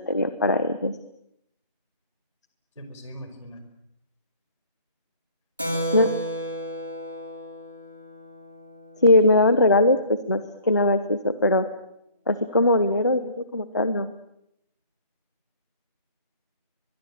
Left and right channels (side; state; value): both; inverted; correlation -0.52